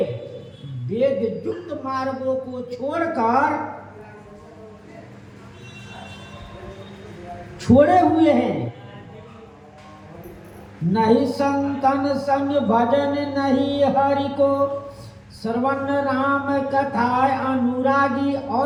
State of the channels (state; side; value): identical; both; correlation 1.00